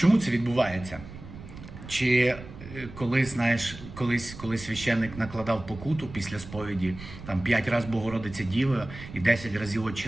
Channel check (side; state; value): right; noise; rumble, 14 dB below the sound